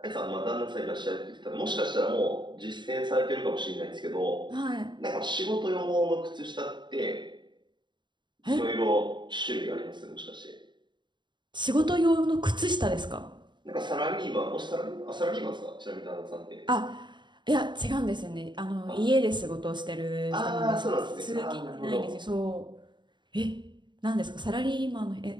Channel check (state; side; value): late; left; 0.22 ms